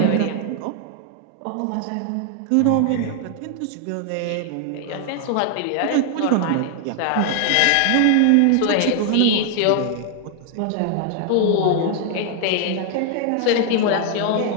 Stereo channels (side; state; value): both; different; correlation 0.00